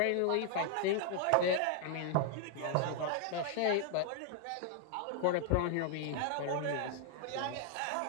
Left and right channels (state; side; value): different; both; correlation 0.00